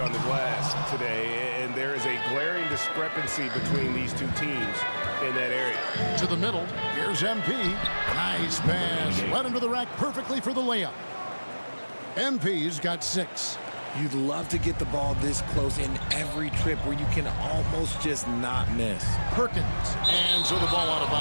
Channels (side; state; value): both; inverted; correlation -1.00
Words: the glass today, and there is a glaring discrepancy between these two teams in that area. To the middle, here's MP. Nice pass. Led him to the rack perfectly for the layup. MP's got 6. You'd love to get the ball this close in every trip where you can almost just not miss. Perkins. And so the ball out of